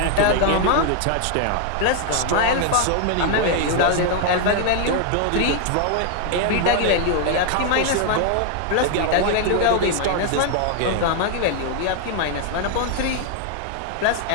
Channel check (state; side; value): different; both; correlation 0.00